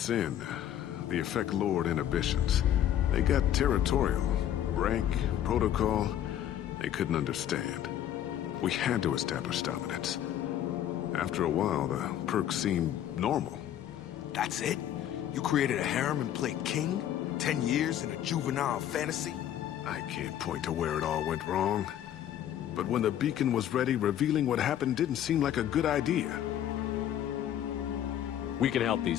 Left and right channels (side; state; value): right; quieter; 11.0 dB